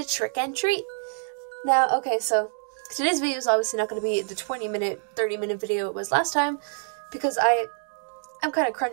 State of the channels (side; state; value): left; silent; 61 dB below the other